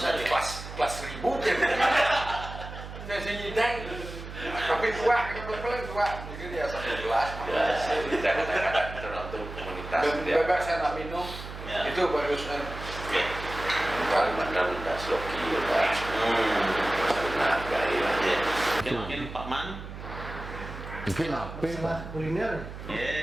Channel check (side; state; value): right; noise; hum, 11 dB below the sound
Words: deh. Kelas 1000 ya. Saya nyidang, tapi tua, yang paling tua mungkin ya 1 gelas. Ya, kadang-kadang tergantung komunitas. Bebas saya nak minum, Ya. itu bagusnya. Ya. Kadang-kadang minta sloki, ya. Saling menghargai lah. Ya. Mungkin Pak Man. Mungkin apa? Masalah kuliner.